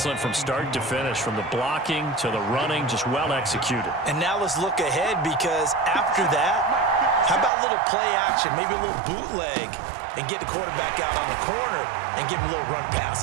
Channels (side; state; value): left; drops out; at 7.5 s